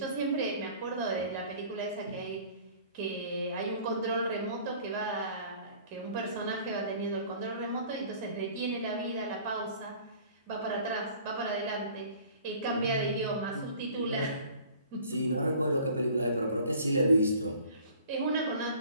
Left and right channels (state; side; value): inverted; both; correlation -0.50